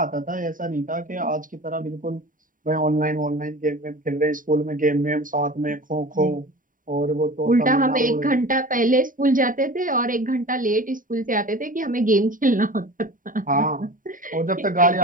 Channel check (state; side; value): late; left; 0.39 ms